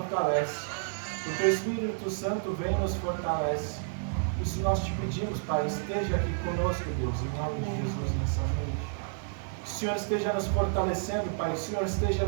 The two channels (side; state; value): left; silent; digital silence